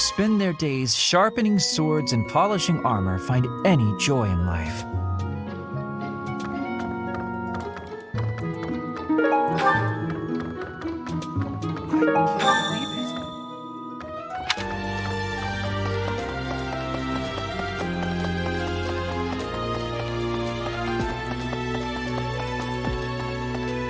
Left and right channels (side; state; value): both; identical; correlation 1.00